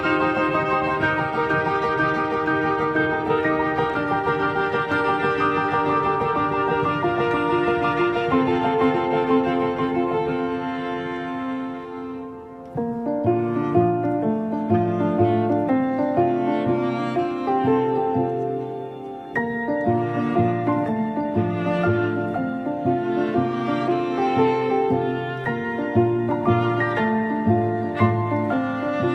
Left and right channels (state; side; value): identical; both; correlation 1.00